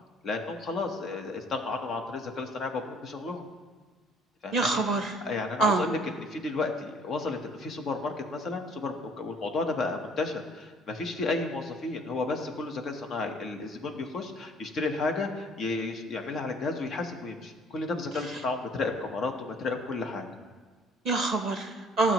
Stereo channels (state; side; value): normal; both; correlation 0.57